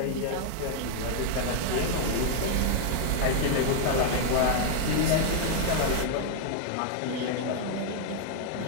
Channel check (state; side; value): different; both; correlation 0.00